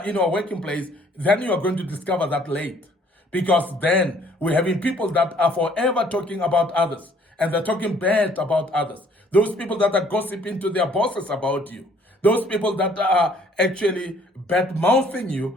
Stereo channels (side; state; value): both; normal; correlation 0.60